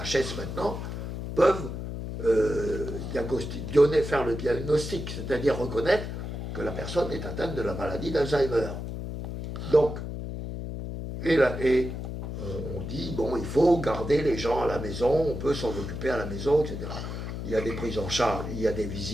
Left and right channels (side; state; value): left; noise; hum, 6 dB below the sound